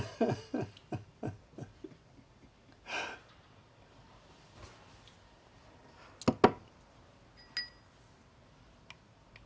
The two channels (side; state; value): both; identical; correlation 1.00